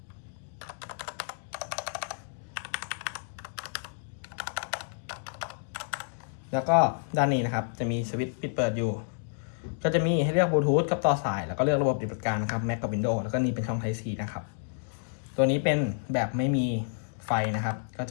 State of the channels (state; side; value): silent; right; digital silence